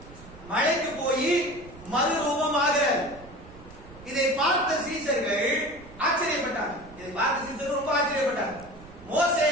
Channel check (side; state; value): right; noise; rumble, 19 dB below the sound